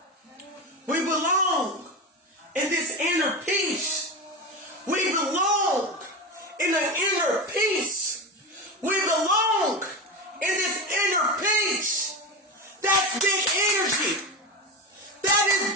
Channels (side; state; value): both; normal; correlation 0.21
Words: we belong in this inner peace, we belong in the inner peace, we belong in this inner peace. That's big energy. That is